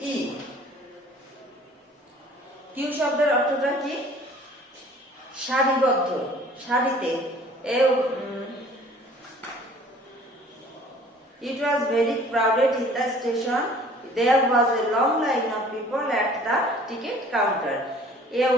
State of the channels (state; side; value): normal; both; correlation 0.51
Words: কিউ শব্দের অর্থটা কি? সারিবদ্ধ, সারিতে। It was very crowded in the station. There was a long line of people at the ticket counter. A